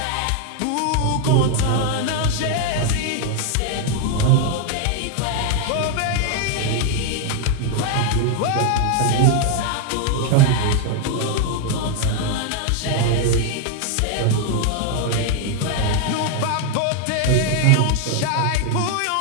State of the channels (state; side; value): different; both; correlation 0.01